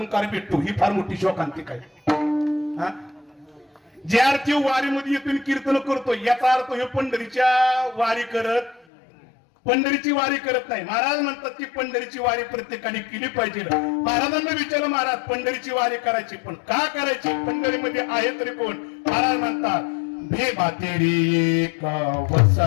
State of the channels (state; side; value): drops out; right; at 8.8 s